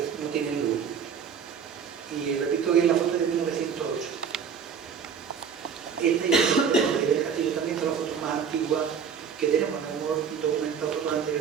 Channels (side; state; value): left; quieter; 6.8 dB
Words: no tienen luz. Y repito que es la foto de 1908. Este y el castillo también son las fotos más antiguas que tenemos, no hemos documentado fotos